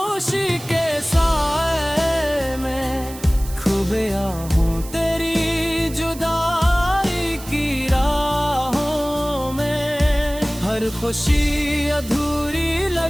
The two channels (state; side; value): noise; right; hiss, 16 dB below the sound